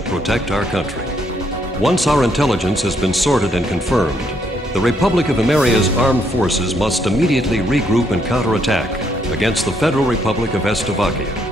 protect our country. Once our intelligence has been sorted and confirmed, the Republic of Emeria's armed forces must immediately regroup and counterattack against the Federal Republic of Estavakia.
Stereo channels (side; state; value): both; normal; correlation 0.73